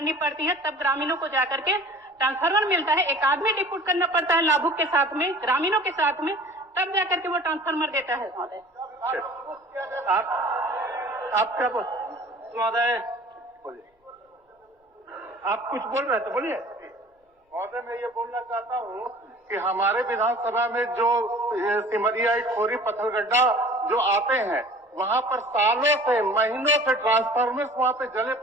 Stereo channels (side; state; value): both; normal; correlation 0.46